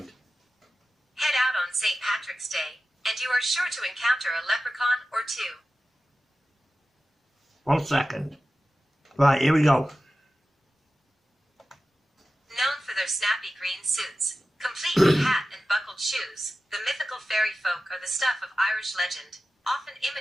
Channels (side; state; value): both; normal; correlation 0.94